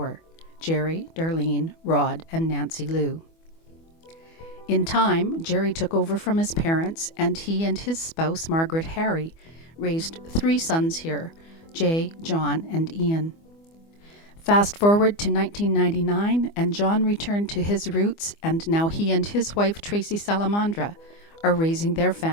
Jerry, Darlene, Rod, and Nancy Lou. In time, Jerry took over from his parents, and he and his spouse, Margaret Harry, raised 3 sons here, Jay, John, and Ian. Fast forward to 1999, and John returned to his roots, and now he and his wife, Tracy Salamandra, are raising their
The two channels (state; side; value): late; right; 24 ms